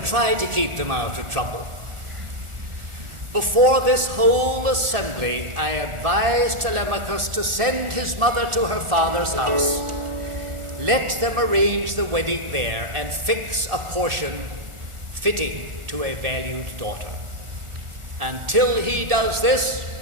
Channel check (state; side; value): late; left; 1.4 ms